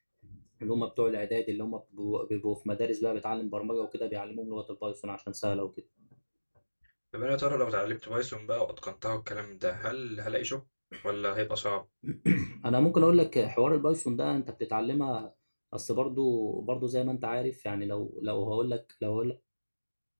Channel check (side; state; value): both; inverted; correlation -1.00